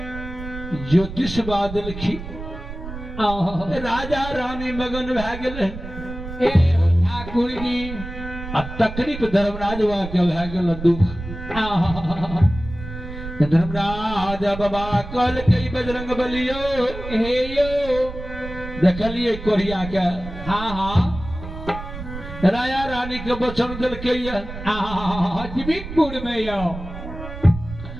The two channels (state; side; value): noise; right; rumble, 10 dB below the sound